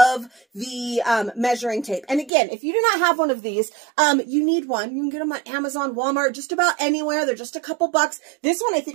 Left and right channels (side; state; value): left; drops out; at 2.3 s